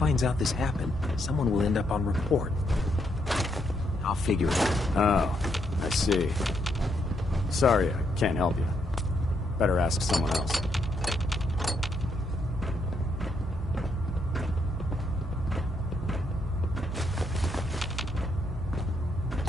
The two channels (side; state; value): both; normal; correlation 0.76